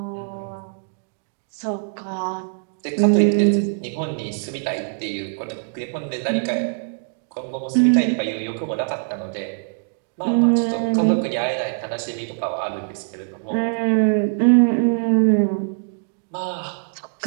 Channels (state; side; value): silent; left; digital silence